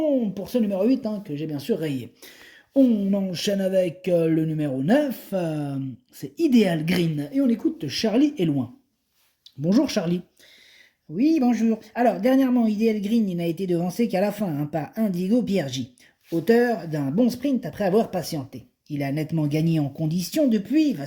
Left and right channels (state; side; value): identical; both; correlation 1.00